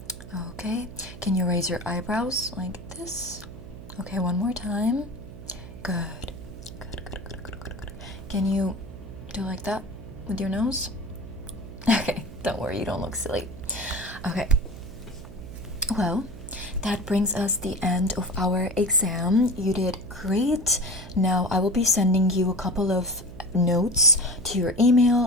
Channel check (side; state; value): right; noise; hum, 15 dB below the sound